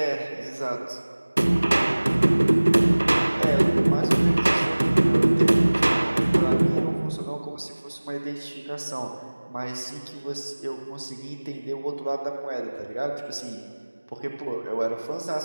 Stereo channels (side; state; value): both; inverted; correlation -1.00